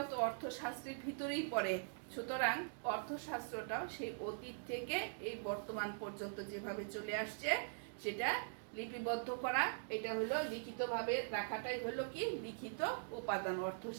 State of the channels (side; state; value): left; silent; digital silence